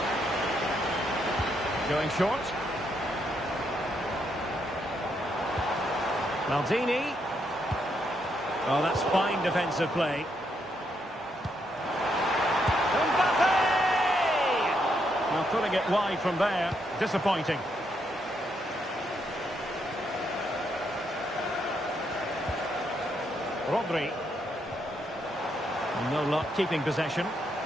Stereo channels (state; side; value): normal; both; correlation 0.77